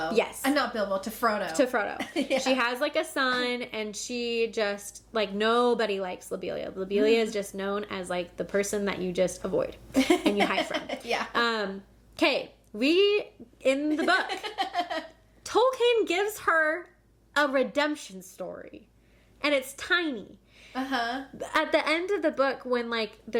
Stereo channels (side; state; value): both; identical; correlation 1.00